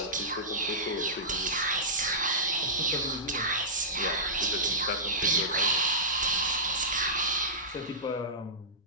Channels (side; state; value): both; normal; correlation -0.17